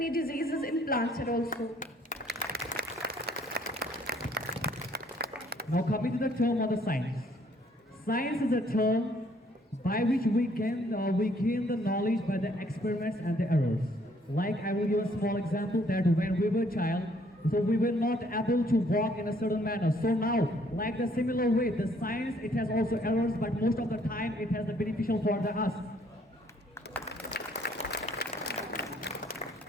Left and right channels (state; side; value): normal; both; correlation 0.64